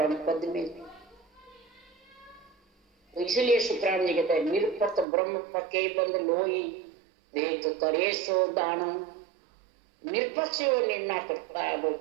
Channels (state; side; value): drops out; left; at 5.1 s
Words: पद में। तो इसलिए सुखराम जी कहते हैं निरपक ब्रह्म पके बंद लोई देख करे सो दानो। निरपक्ष वो निर्णय करता है, वो